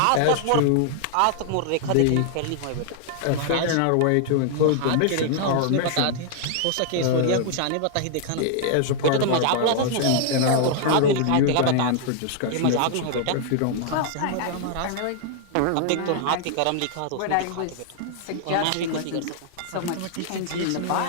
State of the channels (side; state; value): both; different; correlation -0.01